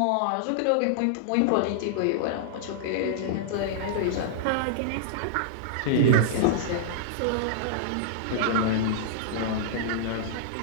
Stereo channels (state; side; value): different; both; correlation -0.02